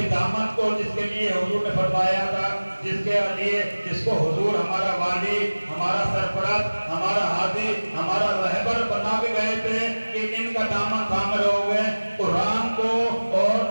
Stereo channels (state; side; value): inverted; both; correlation -1.00